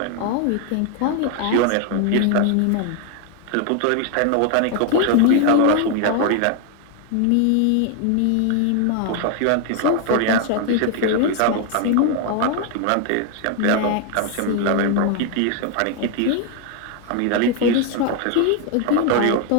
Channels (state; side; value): different; both; correlation 0.00